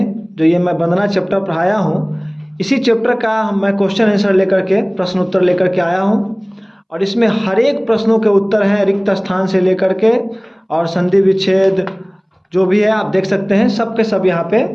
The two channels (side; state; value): both; identical; correlation 1.00